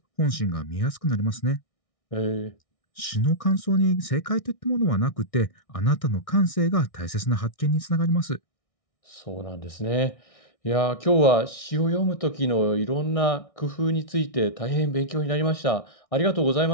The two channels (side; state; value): right; late; 1.6 ms